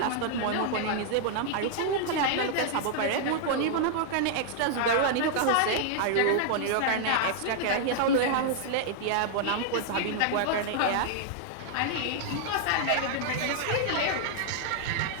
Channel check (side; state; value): both; different; correlation -0.01